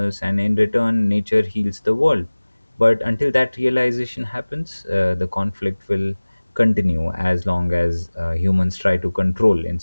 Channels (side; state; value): both; inverted; correlation -1.00